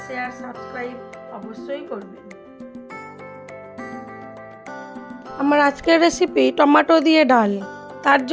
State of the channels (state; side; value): identical; both; correlation 1.00